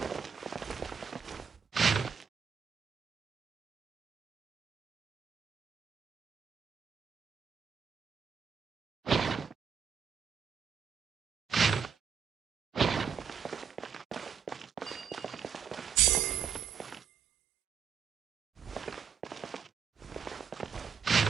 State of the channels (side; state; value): left; quieter; 6.8 dB